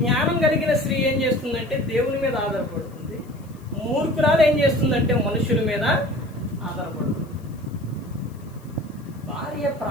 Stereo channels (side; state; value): left; noise; hiss, 29 dB below the sound